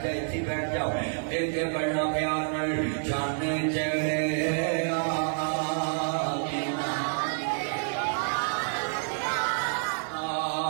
جائے اتنی بیٹھ جاؤ ایک پڑھنا پیار نال چاندے چڑھے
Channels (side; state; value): left; silent; 58 dB below the other